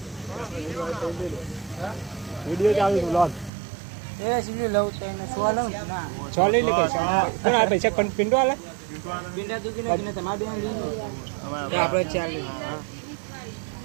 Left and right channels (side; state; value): left; drops out; at 3.5 s